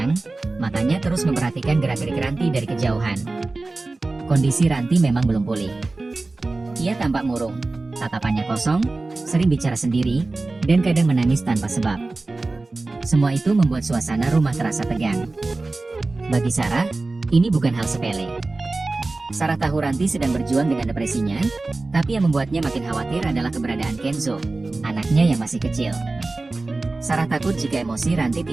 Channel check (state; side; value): quieter; left; 3.3 dB